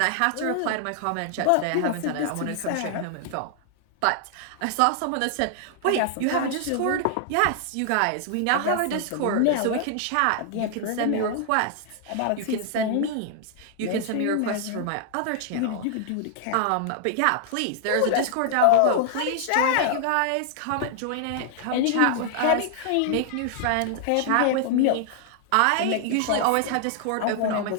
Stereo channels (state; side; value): different; both; correlation 0.00